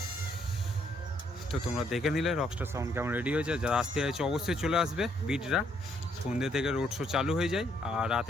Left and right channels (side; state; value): both; normal; correlation 0.70